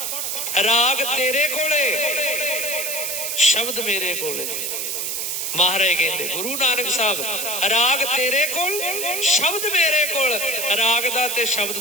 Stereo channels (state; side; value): noise; right; hiss, 2 dB below the sound